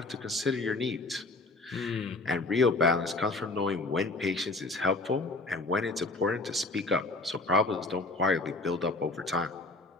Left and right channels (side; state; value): right; quieter; 3.2 dB